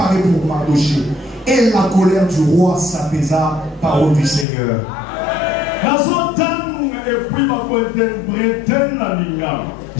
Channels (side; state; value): right; drops out; at 4.5 s